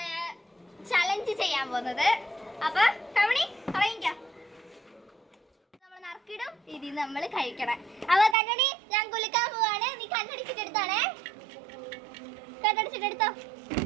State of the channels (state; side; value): drops out; left; at 8.3 s